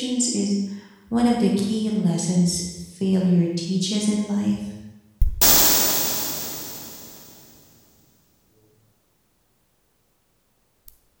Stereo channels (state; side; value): identical; both; correlation 1.00